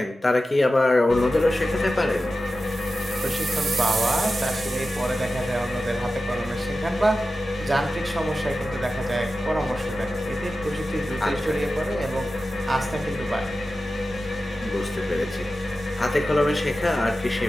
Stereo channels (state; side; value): normal; both; correlation 0.93